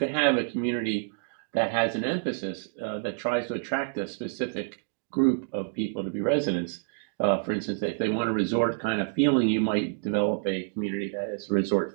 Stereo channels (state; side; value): silent; left; digital silence